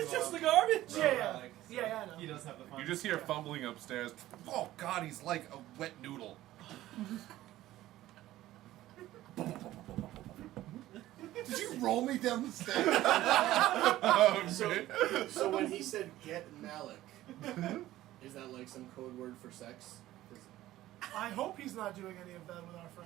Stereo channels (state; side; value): quieter; left; 15.1 dB